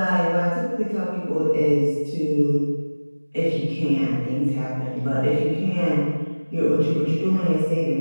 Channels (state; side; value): inverted; both; correlation -1.00